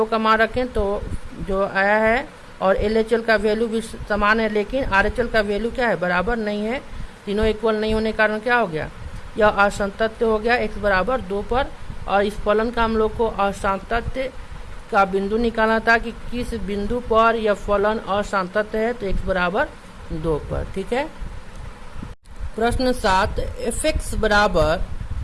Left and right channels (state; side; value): identical; both; correlation 1.00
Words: का मान रखें तो जो आया है, और LHL का वैल्यू भी समान है, लेकिन RHL का वैल्यू क्या है, बराबर नहीं है। तीनों इक्वल नहीं होने के कारण क्या हो गया, यह असंतत्य हो गया x बराबर 2 पर। और इस फलन का हम लोग को असंतत्य का बिंदु निकालना था कि किस बिंदु पर यह फलन असंतत्य है, तो x बराबर 2 पर। ठीक है। प्रश्न 7, fx बराबर